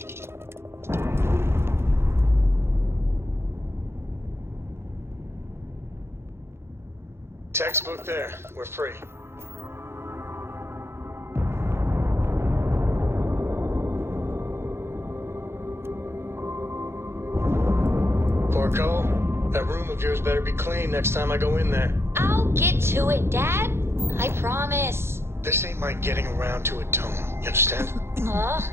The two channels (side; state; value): left; late; 0.12 ms